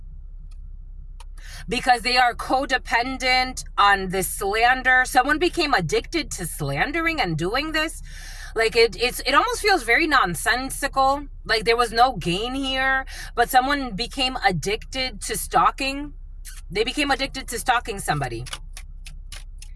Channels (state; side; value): identical; both; correlation 1.00